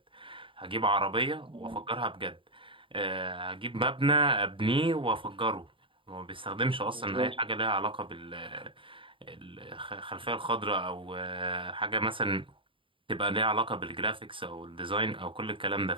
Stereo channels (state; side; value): late; left; 0.25 ms